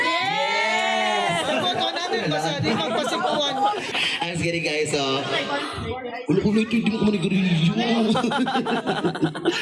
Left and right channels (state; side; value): identical; both; correlation 1.00